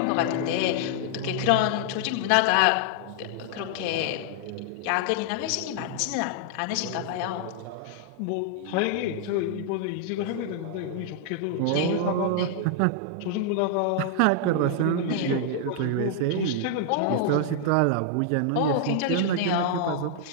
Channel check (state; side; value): different; both; correlation -0.01